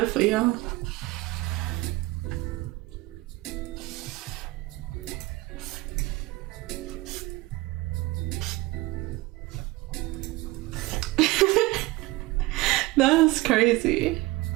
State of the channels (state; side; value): quieter; left; 20.1 dB